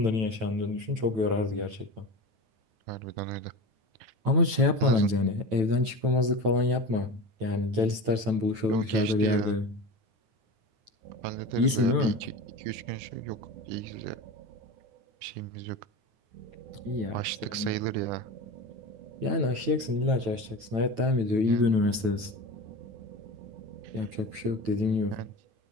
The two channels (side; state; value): left; late; 9.1 ms